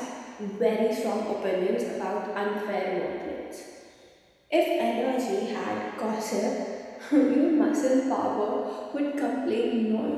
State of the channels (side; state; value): both; identical; correlation 1.00